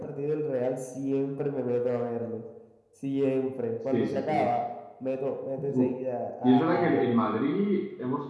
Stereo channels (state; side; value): identical; both; correlation 1.00